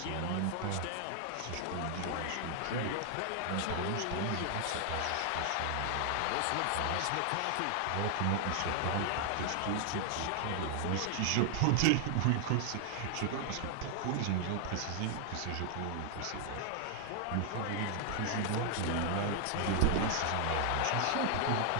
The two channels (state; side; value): different; both; correlation 0.00